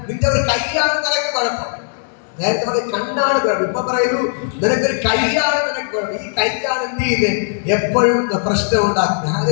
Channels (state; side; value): silent; right; digital silence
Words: നിന്റെ ഒരു കൈയാണ് നിനക്ക് കുഴപ്പം. നേരത്തെ പറയും കണ്ണാണ് കുഴപ്പം. ഇപ്പൊ പറയുന്നു, നിനക്കൊരു കൈയാണ് നിനക്ക് കുഴപ്പം. ഈ കൈയാണ് എന്ത് ചെയ്യുന്നത്? എപ്പോഴും പ്രശ്നം ഉണ്ടാക്കുന്നത്.